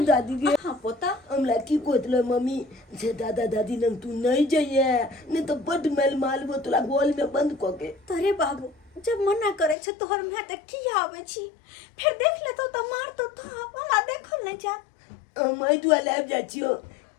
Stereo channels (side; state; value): right; drops out; at 9.8 s